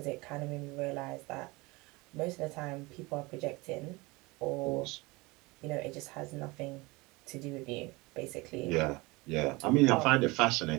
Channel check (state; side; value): quieter; left; 23.9 dB